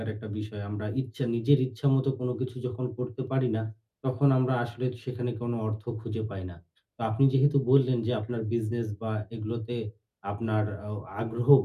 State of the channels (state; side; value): identical; both; correlation 1.00